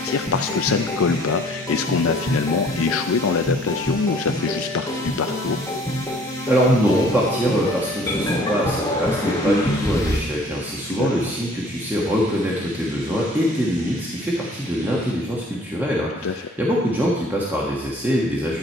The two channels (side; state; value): both; normal; correlation 0.55